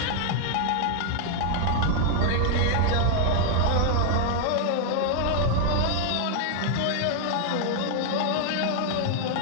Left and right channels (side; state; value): both; different; correlation 0.00